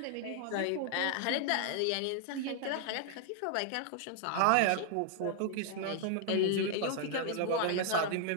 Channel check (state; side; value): different; both; correlation 0.00